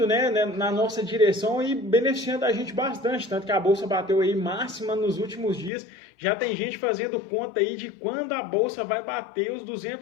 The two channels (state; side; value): drops out; right; at 5.7 s